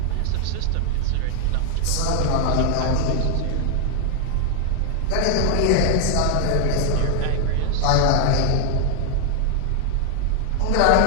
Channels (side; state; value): both; different; correlation 0.00